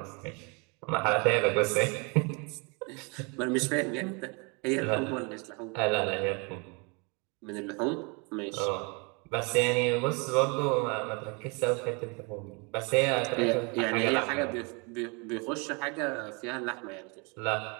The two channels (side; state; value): left; quieter; 31.9 dB